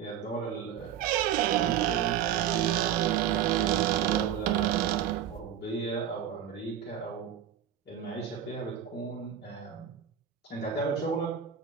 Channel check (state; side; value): quieter; left; 9.6 dB